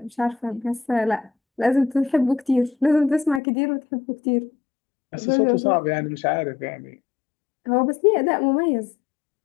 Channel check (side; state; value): right; drops out; at 3.4 s